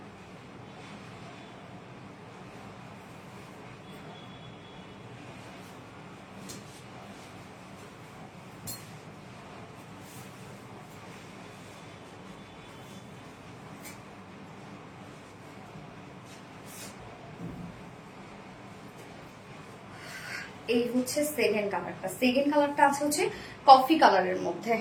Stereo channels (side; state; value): both; identical; correlation 1.00